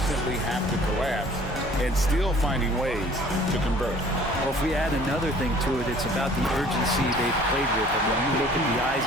have to collapse and still finding ways to convert. Well, if we add another thing to it, it's about the urgency they've played with. And when you look at the eyes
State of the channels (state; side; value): normal; both; correlation 0.52